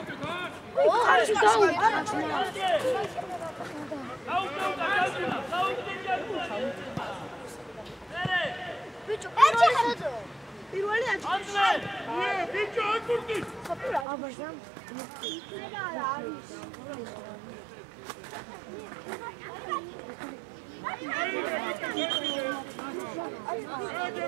ხარში დაუდა ბიჭო პირველი აჭირე ბიჭო აკურდი აბაზამ რა არის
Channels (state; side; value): drops out; left; at 14.1 s